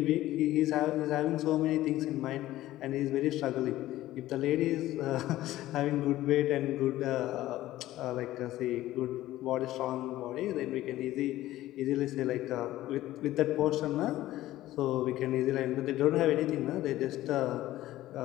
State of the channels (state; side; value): quieter; right; 15.3 dB